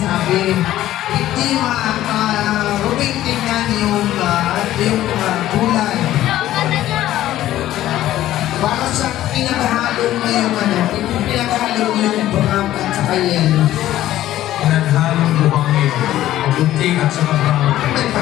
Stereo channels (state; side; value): quieter; right; 13.8 dB